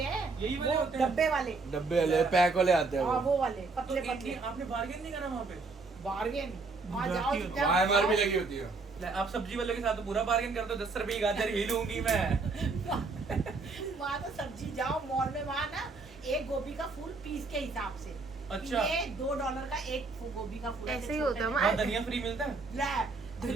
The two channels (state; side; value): quieter; left; 3.9 dB